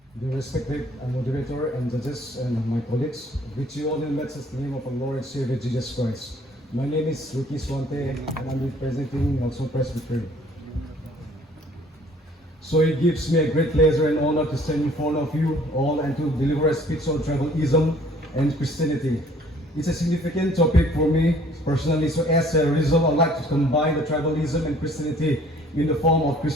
The respected moderator and judges and my colleagues, greet you all in the matchless name of our Lord and Savior Jesus Christ. My name is Ricky Suante and I'm representing NGALSONG Presbytery. So it gives me a great pleasure and honor to stand in front of you all and to deliver a speech on tribalism and Christianity. It's a significant topic for me personally, so as a result I'd like to combine the tribalism and Christianity in the form of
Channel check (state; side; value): normal; both; correlation 0.57